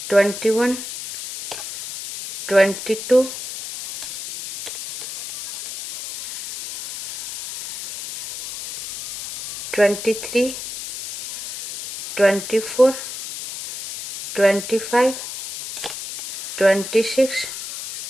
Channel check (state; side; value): noise; left; hiss, 10 dB below the sound